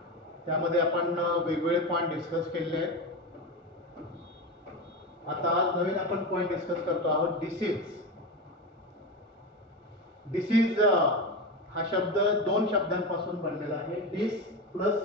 त्यामध्ये आपण वेगवेगळे पॉइंट डिस्कस केले आहेत. आता आज नवीन आपण पॉइंट डिस्कस करतो आहोत डिसीज. डिसीज हा शब्द दोन शब्दांपासून बनलेला आहे. डिस plus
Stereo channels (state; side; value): normal; both; correlation 0.19